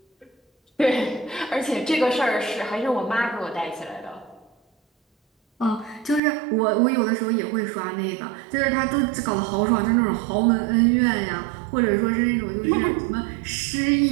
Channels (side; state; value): left; drops out; at 6.2 s